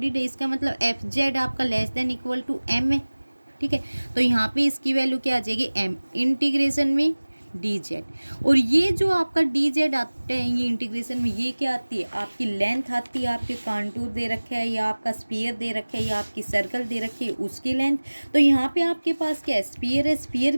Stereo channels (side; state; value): both; inverted; correlation -1.00